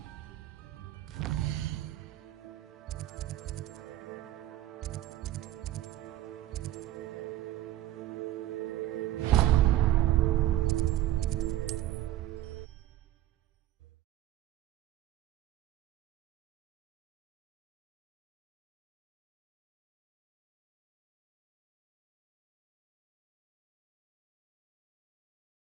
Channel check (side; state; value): left; quieter; 14.0 dB